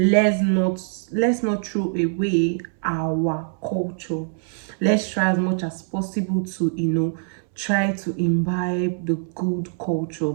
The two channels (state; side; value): silent; left; 63 dB below the other